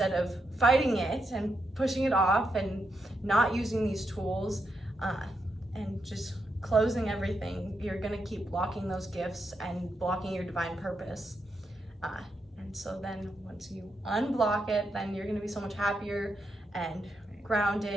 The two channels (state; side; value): normal; both; correlation 0.82